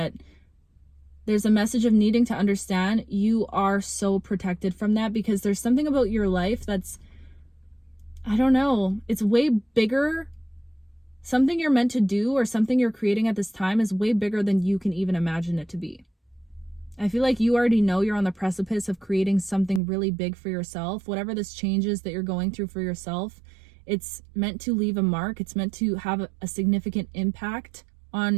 There's a message of needing to understand you are so protected from that, because there's something about your life that's, I don't know, it's way bigger. Something you're meant to do or something you're creating at this time is way bigger than you can even imagine it to be. I feel like you already know you're on the precipice of creating something really big for yourself. Whatever this change is that you're going through for yourself, it's meant to leave a mark. It's meant to have a significant impact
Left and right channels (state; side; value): drops out; left; at 19.8 s